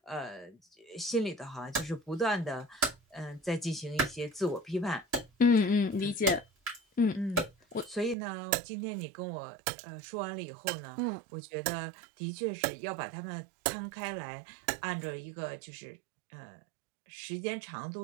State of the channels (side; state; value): left; drops out; at 8.2 s